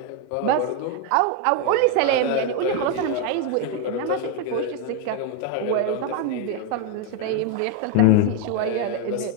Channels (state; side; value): different; both; correlation 0.02